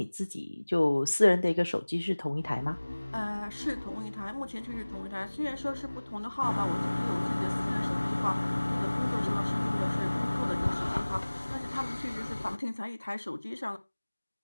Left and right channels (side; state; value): both; inverted; correlation -1.00